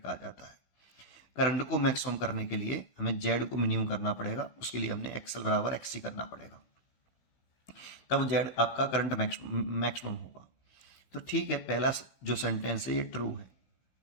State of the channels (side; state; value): right; late; 16 ms